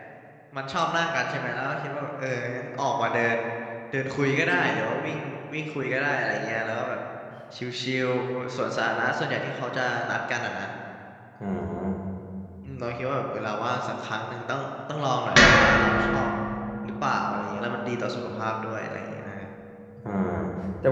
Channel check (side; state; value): both; identical; correlation 1.00